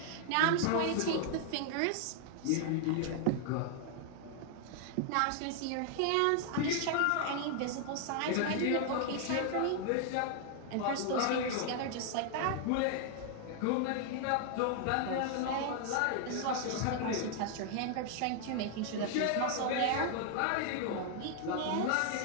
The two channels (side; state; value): both; different; correlation 0.00